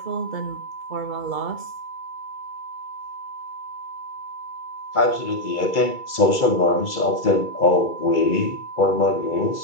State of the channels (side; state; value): right; late; 2.3 ms